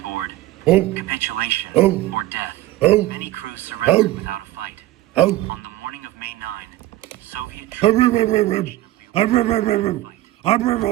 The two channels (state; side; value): quieter; left; 15.9 dB